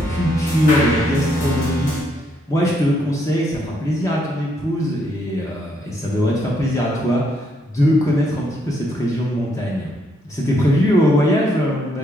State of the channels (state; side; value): normal; both; correlation 0.74